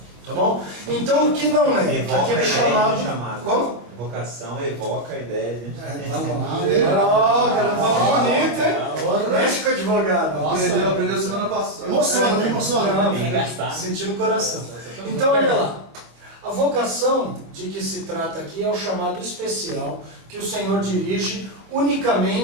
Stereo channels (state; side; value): late; left; 25 ms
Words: Tá bom? Então o que não é? Aqui é chamado. Como? Vocação evoca a ideia de... Cara, fala bonito, hein? Mexe com o advogado. Aprendeu semana passada. Emociona. Sentir no coração. Então, olha lá. A vocação de que se trata aqui é o chamado especial que o Senhor dirige